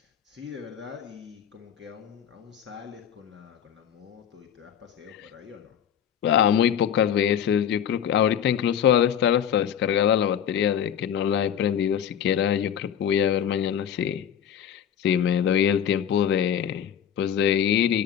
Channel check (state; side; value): quieter; right; 9.0 dB